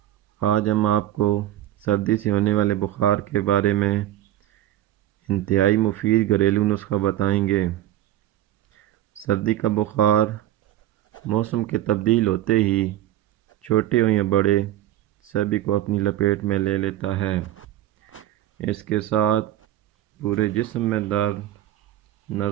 آج ہم آپ کو سردی سے ہونے والے بخار کے بارے میں انتہائی مفید گھریلو نسخہ بتائیں گے۔ سردی کا بخار موسم کے تبدیل ہوتے ہی چھوٹے ہوں یا بڑے سبھی کو اپنی لپیٹ میں لے لیتا ہے۔ اس کے ساتھ پورے جسم میں درد،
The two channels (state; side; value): quieter; left; 12.9 dB